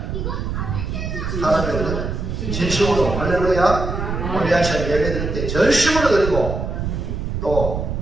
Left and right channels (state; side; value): noise; right; rumble, 3 dB below the sound